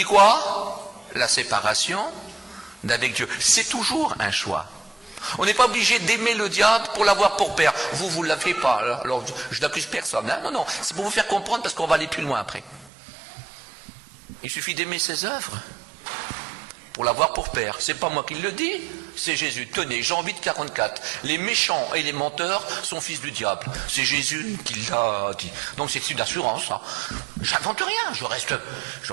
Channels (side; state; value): left; drops out; at 12.9 s